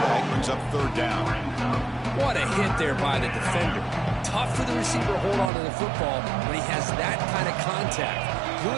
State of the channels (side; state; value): left; drops out; at 5.5 s